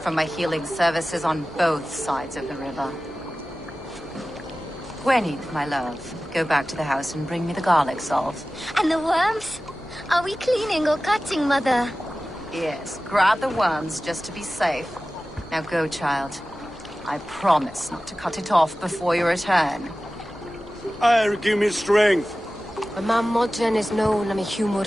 my healing services on both sides of the river. Gwenny, my love, go back to the house and bring me the garlic salt. And the worms? Are we cleaning or cutting, Mother? Yes, grab the worms just to be safe. Now go, child. I promise not to cut it off before your return. Give me strength. My man Modron is known am a humor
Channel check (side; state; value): both; normal; correlation 0.96